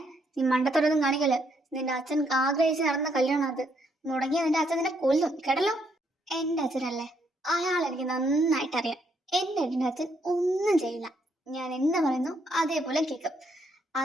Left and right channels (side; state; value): both; normal; correlation 0.73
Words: നീ മണ്ടത്തോടൊന്നും കാണിക്കല്. നിന്റെ അച്ഛൻ ആഗ്രഹിച്ച് നടന്ന കല്യാണം അത്. മുടങ്ങിയ നിന്റെ അച്ഛൻ നിന്നെ കൊല്ലും, കേട്ടല്ലോ. എന്റെ അച്ഛനല്ലേ, അയാൾ എനിക്ക് നന്നായിട്ട് അറിയാം. എന്റെ അച്ഛൻ ഒന്നും ചെയ്യില്ല. ഞാൻ എന്താ പറയുന്നു അതേപോലെ കേൾക്കും.